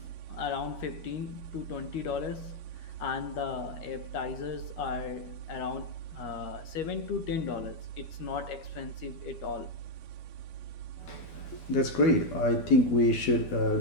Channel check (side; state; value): right; late; 12 ms